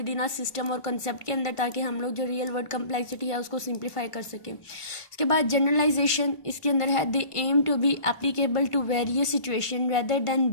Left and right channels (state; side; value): late; right; 1.5 ms